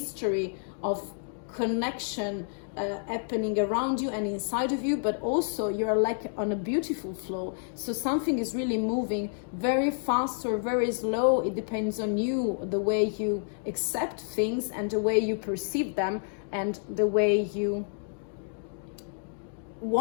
of connection happening around you and inside of you, but also you're like on a beautiful flow. So something is really moving very fast or very slow. It depends on you, the way you accept things and the way you perceive them and the way you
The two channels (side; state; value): right; silent; digital silence